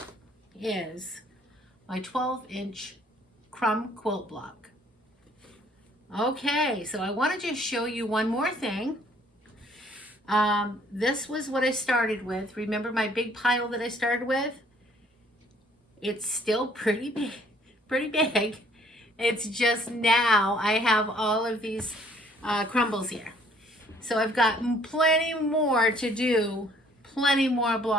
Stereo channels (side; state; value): both; normal; correlation 0.60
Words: is my 12-inch crumb quilt block. Okay, so I want to just show you one more thing. This was what I started with. Remember my big pile that I started with? It's still pretty big. It's just now I have all of these crumbles here. So I've got plenty more to do, plenty more